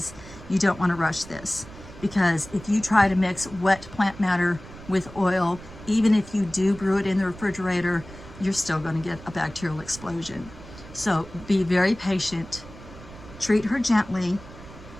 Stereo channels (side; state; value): right; noise; rumble, 17 dB below the sound